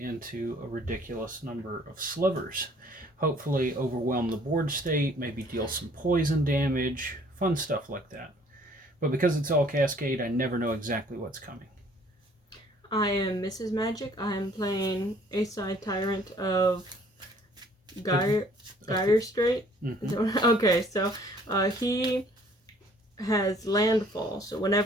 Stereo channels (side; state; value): both; normal; correlation 0.58